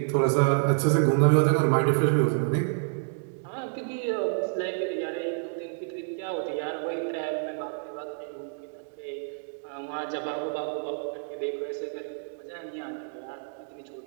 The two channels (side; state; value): left; silent; digital silence